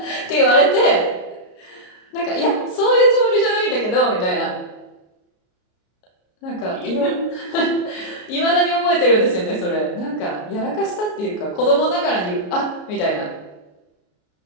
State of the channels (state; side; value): late; right; 33 ms